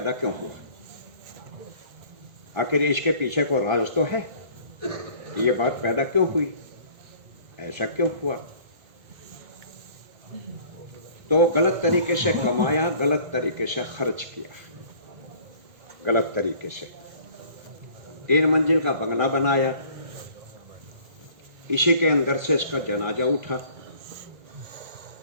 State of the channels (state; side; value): late; left; 1.8 ms